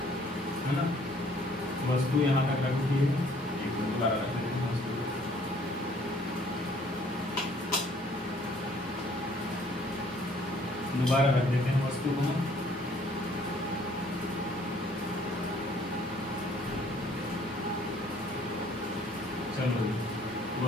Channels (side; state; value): both; normal; correlation 0.60